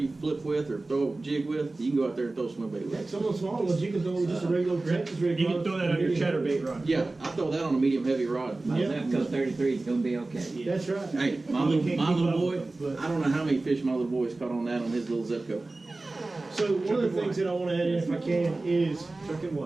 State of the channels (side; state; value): left; quieter; 3.1 dB